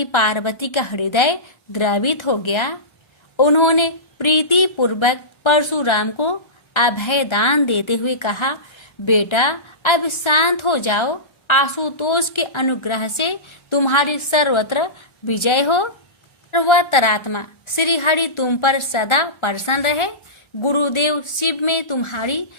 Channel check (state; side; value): late; right; 1.3 ms